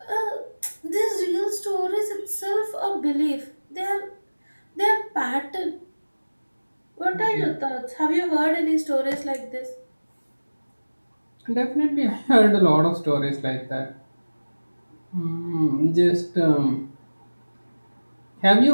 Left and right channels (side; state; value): both; inverted; correlation -1.00